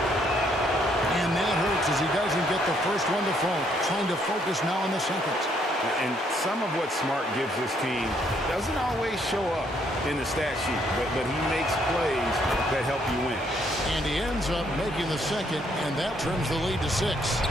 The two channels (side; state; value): both; normal; correlation 0.70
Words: And that hurts mistakes as he doesn't get the first one to fall. Trying to focus now on the second. And some of what Smart gives this team doesn't always show up in the stat sheet, but he makes plays that help you win. And he ends up making the second, and that trims the lead to 6.